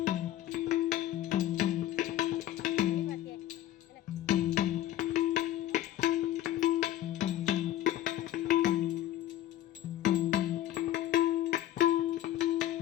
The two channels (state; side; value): quieter; right; 13.2 dB